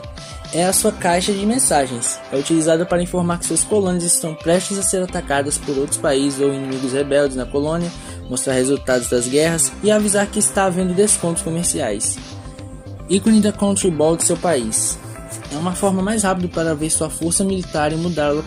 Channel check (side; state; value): both; identical; correlation 1.00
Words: É a sua caixa de mensagens. É utilizada para informar que suas colônias estão prestes a ser atacadas por outros países ou inimigos rebeldes na colônia, mostrar resultados das guerras e avisar que está havendo descontos comerciais. Ícone da Country Ball do seu país. É uma forma mais rápida para ver sua força militar e mudar a